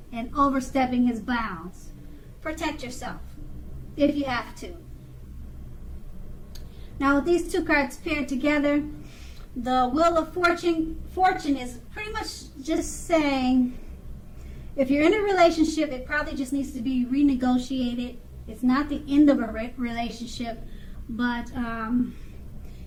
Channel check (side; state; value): both; identical; correlation 1.00